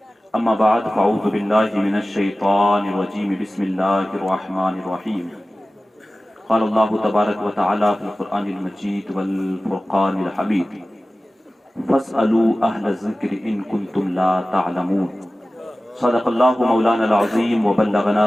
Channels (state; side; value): normal; both; correlation 0.96